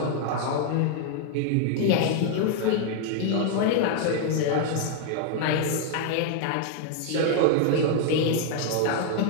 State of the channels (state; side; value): different; both; correlation 0.00